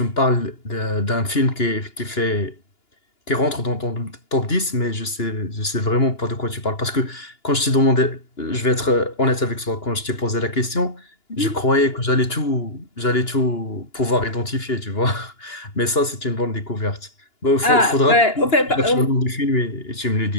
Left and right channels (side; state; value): right; late; 2.9 ms